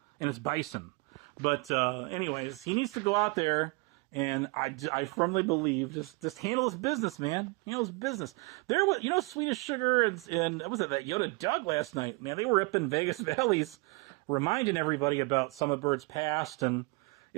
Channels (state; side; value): quieter; left; 27.8 dB